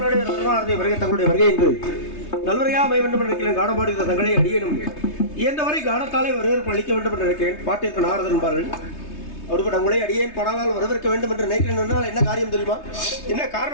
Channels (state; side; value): late; right; 3.3 ms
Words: ரத்னாரதி வருகை தங்களுடைய வருகை என்று நல்வரையா அமைய வேண்டும் என்று நினைக்கிறேன். காணப்பாடுகிற தங்களை அடியனும் இயன்றவரை காணத்தாலே வரவேற்பு அளிக்க வேண்டும் என்று நினைக்கிறேன். பாட்டிற்கு நாரதன் என்பார்கள். அப்படிப்பட்ட உங்களை அடியேன் படாலால் வரவேற்க வேண்டும் என்று நினைக்கிறேன். என்ன காரியம் தெரியுமா? என்ன